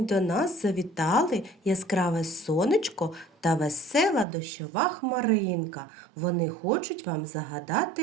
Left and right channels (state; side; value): drops out; left; at 4.2 s